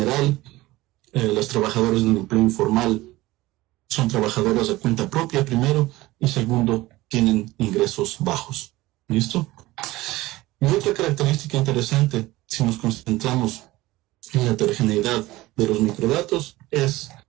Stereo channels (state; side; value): quieter; left; 18.7 dB